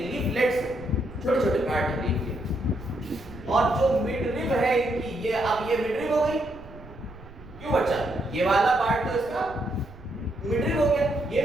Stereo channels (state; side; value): noise; right; rumble, 19 dB below the sound